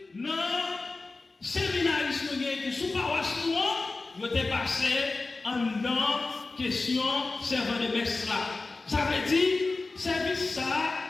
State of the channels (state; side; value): quieter; right; 3.5 dB